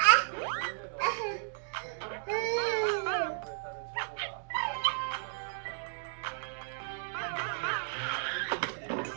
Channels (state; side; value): silent; left; digital silence